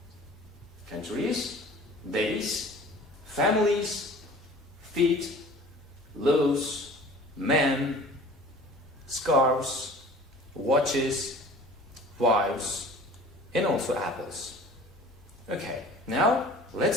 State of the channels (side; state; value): both; normal; correlation 0.45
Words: Countries, days, families, feet, loaves, men, scarves, watches, wives, and also apples. Okay, now